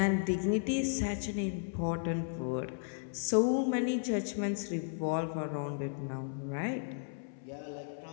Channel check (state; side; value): silent; right; 55 dB below the other